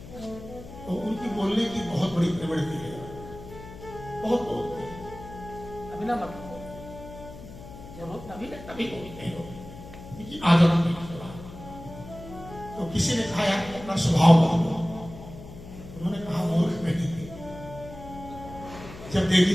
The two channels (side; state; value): left; noise; hum, 15 dB below the sound